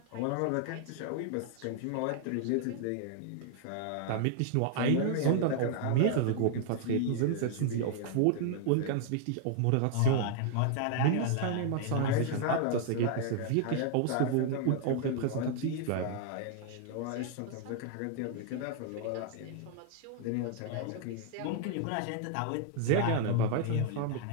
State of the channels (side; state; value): both; different; correlation 0.00